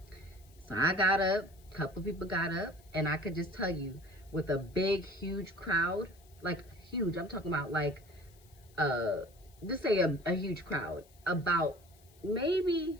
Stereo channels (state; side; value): noise; left; hiss, 28 dB below the sound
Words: So I got up, a couple of people got up, and I could just tell you, with a big, huge crowd, like huge, I'm talking about like, just say a huge crowd, about maybe